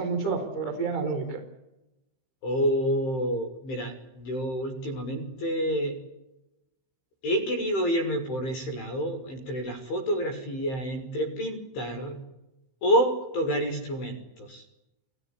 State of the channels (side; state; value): right; late; 15 ms